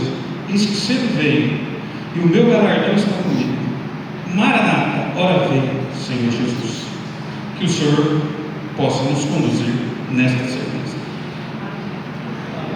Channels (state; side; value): identical; both; correlation 1.00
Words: eis que cedo venho, e o meu galardão está comigo. Maranata, ora vem, Senhor Jesus. Que o Senhor possa nos conduzir nesta semana.